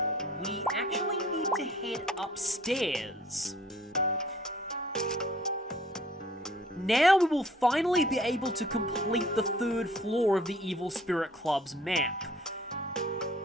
we actually need to head upstairs. Now we will finally be able to complete the 3rd floor of the Evil Spirit Club's map.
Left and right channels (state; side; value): normal; both; correlation 0.55